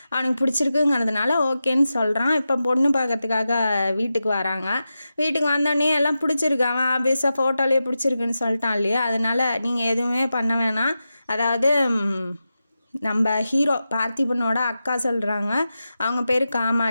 அவனுக்கு பிடிச்சிருக்குங்கிறதுனால ஓகேன்னு சொல்கிறான். இப்போ பொண்ணு பார்க்கறதுக்காக வீட்டுக்கு வராங்க. வீட்டுக்கு வந்தோடனே எல்லாம் பிடிச்சிருக்கு, அவன் ஆபியஸாக ஃபோட்டோலேயே பிடிச்சிருக்குன்னு சொல்லிட்டான் இல்லையா. அதனால் நீங்கள் எதுவுமே பண்ண வேணாம். அதாவது நம்ம ஹீரோ பார்த்திபனோட அக்கா சொல்கிறாங்க, அவங்க பேர்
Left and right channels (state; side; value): inverted; both; correlation -0.91